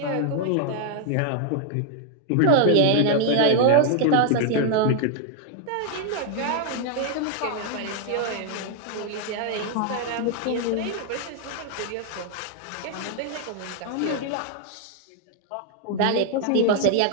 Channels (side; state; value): both; different; correlation 0.00